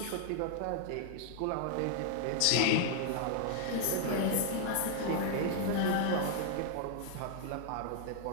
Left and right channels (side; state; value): both; different; correlation 0.00